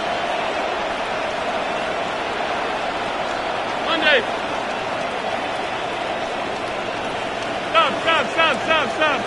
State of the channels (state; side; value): identical; both; correlation 1.00